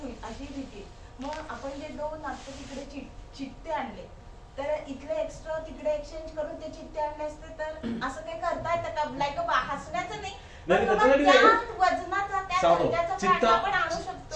होईल अशी भीती. मग आपण जे 2 आता तिकडे चित्ते आणले तर इथले एक्स्ट्रा तिकडे एक्सचेंज करून ते चित्ते आणले असते तर असं काही करता येतं का? लाईक हसण्याचं नाही नाही, पण त्याच्यासाठी बाबा नाही. त्या वजनाचा त्या सांगतो. दर्जाचा चित्ता- प्राणी आपण आणू शकतो का?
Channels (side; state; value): both; identical; correlation 1.00